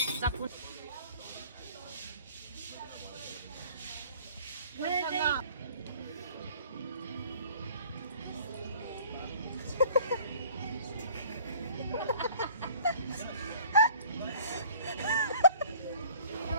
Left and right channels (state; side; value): inverted; both; correlation -0.51